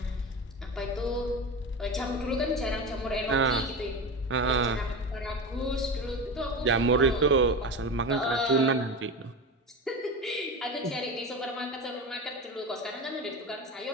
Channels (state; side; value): normal; both; correlation 0.25